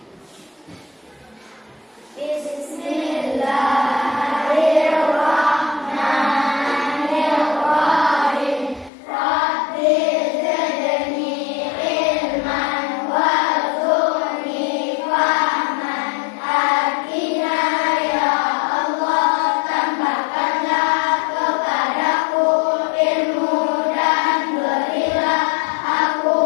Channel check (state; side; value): drops out; right; at 8.9 s